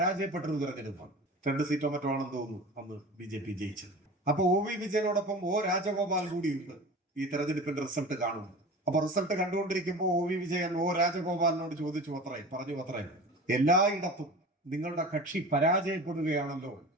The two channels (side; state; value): both; normal; correlation 0.35